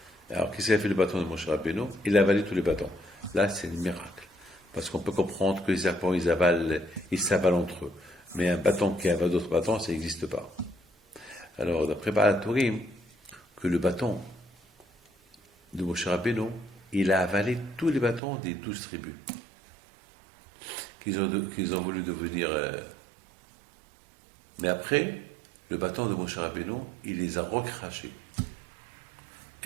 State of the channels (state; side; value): drops out; left; at 18.2 s